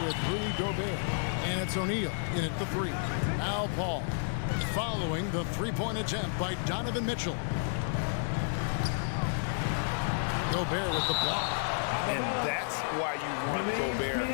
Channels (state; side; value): silent; right; digital silence